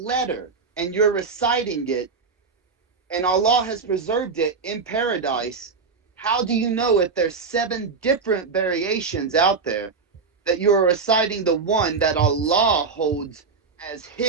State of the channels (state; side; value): quieter; left; 4.8 dB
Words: and you're reciting it and Allah has preserved it in paradise, how do you know if there's 7 different variations out there that you're reciting the one that Allah holds as